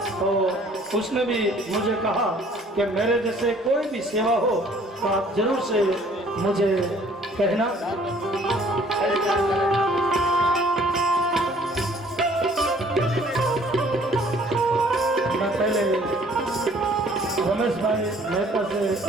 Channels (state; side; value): normal; both; correlation 0.57